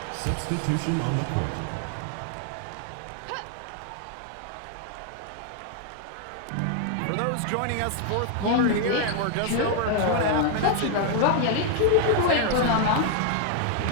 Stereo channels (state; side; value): different; both; correlation 0.00